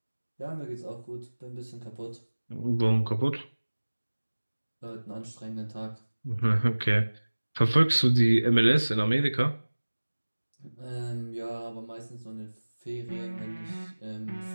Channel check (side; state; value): both; inverted; correlation -1.00